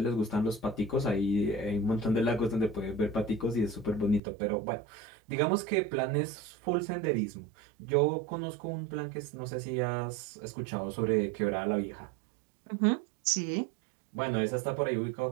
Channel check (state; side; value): drops out; left; at 4.2 s